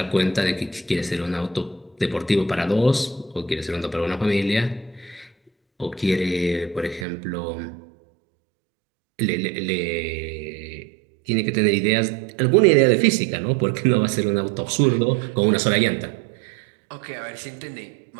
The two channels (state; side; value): drops out; left; at 7.1 s